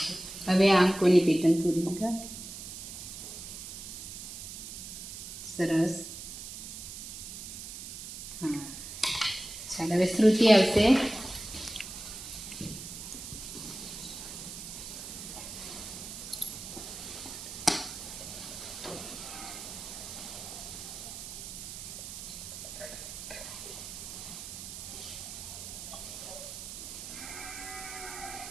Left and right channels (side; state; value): right; noise; hiss, 9 dB below the sound